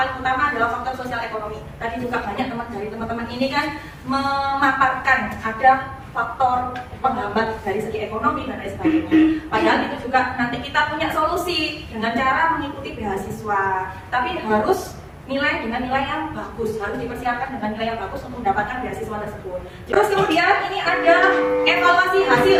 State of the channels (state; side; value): identical; both; correlation 1.00